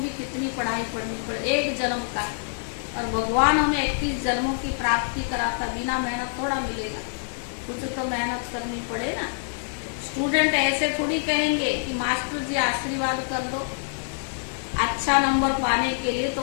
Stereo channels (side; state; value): right; silent; digital silence